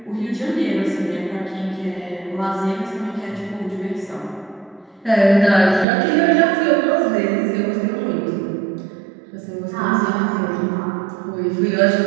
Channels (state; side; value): drops out; left; at 5.9 s